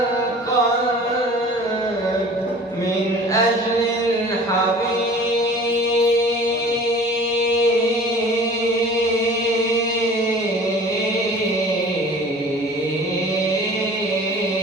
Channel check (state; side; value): normal; both; correlation 0.44